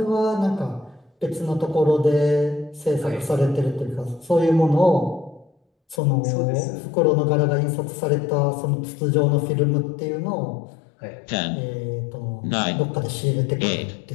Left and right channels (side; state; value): right; drops out; at 6.0 s